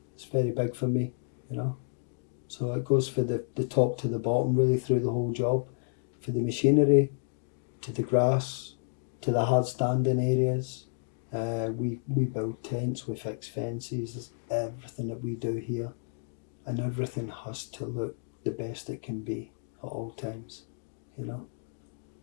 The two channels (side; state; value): right; silent; digital silence